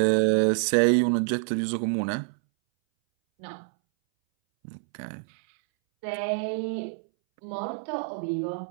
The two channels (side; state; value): left; silent; 60 dB below the other